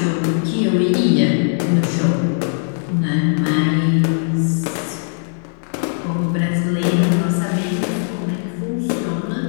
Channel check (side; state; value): right; silent; digital silence